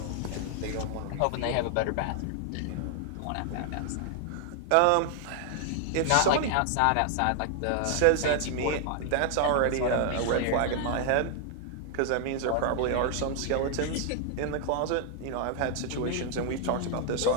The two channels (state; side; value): different; both; correlation 0.00